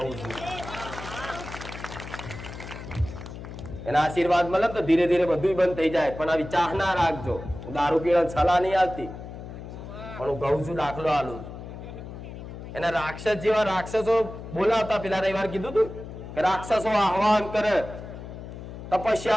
છું. એના આશીર્વાદ મળે તો ધીરે ધીરે બધું બંધ થઈ જાય. પણ આવી ચાહ ના રાખજો. દારૂ પીવા સલાહ નહીં આવતી, પણ હું કહું છું, દાખલો આલું. એના રાક્ષસ જેવા રાક્ષસો બોલાવતા. પેલા રવિવાર કીધું તું કે રાક્ષસો આહવાન કરે,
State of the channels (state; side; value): noise; left; hum, 11 dB below the sound